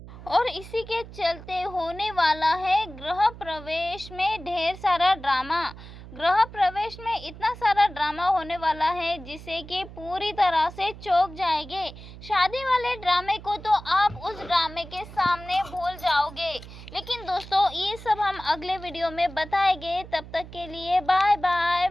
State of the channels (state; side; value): noise; right; hum, 15 dB below the sound